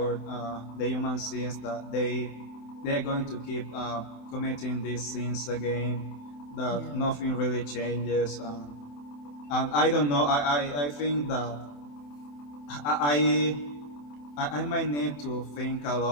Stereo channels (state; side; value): late; right; 27 ms